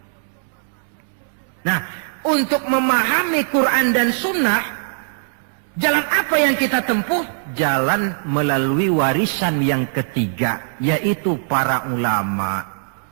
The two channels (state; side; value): silent; left; 64 dB below the other